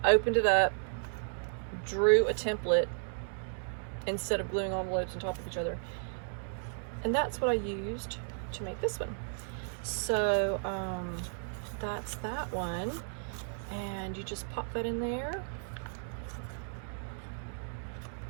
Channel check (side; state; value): left; silent; digital silence